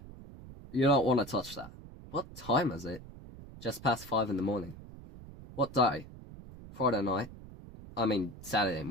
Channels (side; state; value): right; noise; rumble, 16 dB below the sound